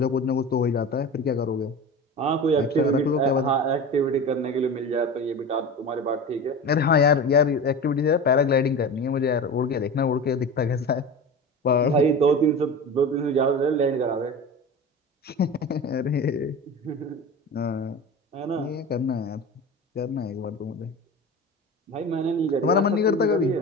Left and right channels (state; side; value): normal; both; correlation 0.31